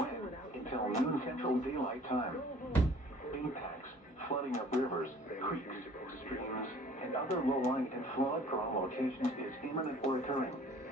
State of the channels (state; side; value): normal; both; correlation 0.52